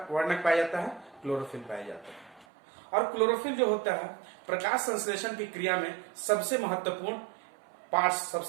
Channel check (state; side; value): drops out; left; at 2.5 s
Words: वर्णक पाया जाता है? क्लोरोफिल पाया जाता है। और क्लोरोफिल जो होता है प्रकाश संश्लेषण की क्रिया में सबसे महत्वपूर्ण पार्ट,